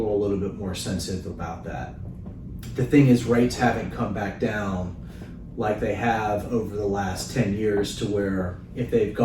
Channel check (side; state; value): both; identical; correlation 1.00